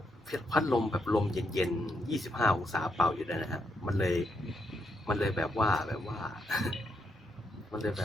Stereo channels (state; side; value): normal; both; correlation 0.79